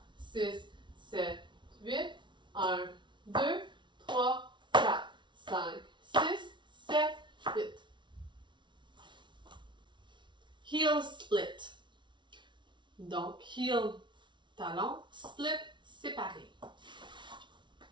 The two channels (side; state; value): left; late; 0.23 ms